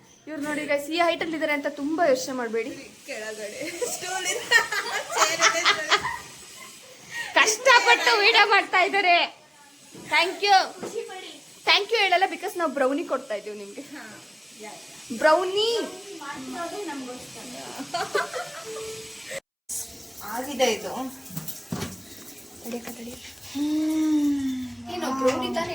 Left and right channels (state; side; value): identical; both; correlation 1.00